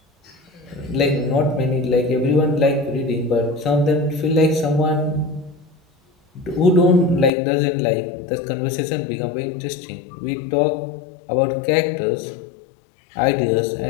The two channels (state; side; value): drops out; right; at 7.3 s